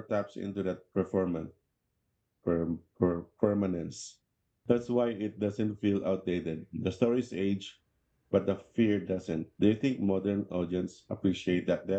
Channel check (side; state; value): both; identical; correlation 1.00